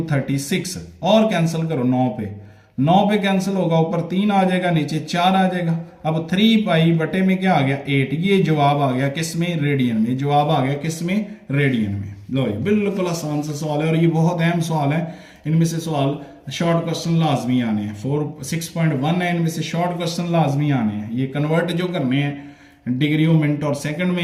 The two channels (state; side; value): identical; both; correlation 1.00